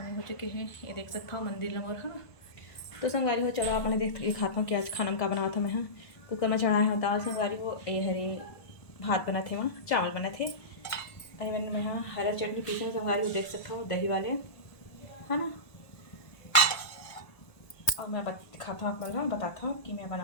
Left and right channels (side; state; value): right; late; 1.4 ms